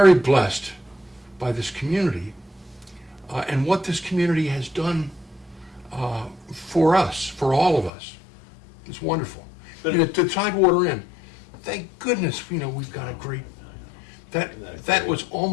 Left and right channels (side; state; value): right; drops out; at 7.9 s